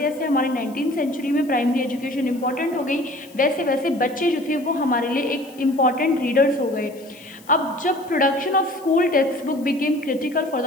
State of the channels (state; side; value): noise; left; hiss, 24 dB below the sound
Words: हमारे 19th सेंचुरी में प्राइमरी एजुकेशन इंपॉर्टेंट हो गई वैसे वैसे बच्चे जो थे वो हमारे लिए एक इम्पॉर्टेंट रीडर्स हो गए। अब जब production of school text book became critical for